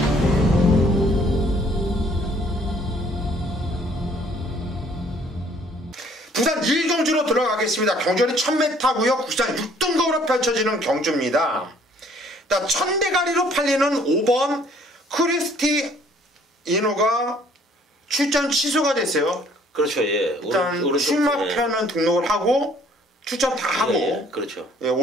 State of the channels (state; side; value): normal; both; correlation 0.60